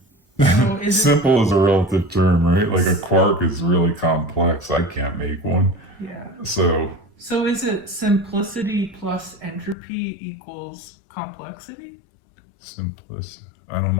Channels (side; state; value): right; drops out; at 9.8 s